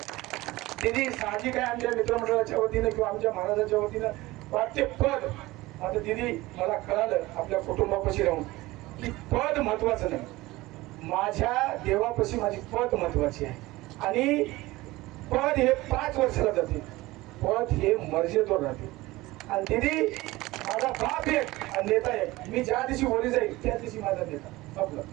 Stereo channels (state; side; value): quieter; left; 19.4 dB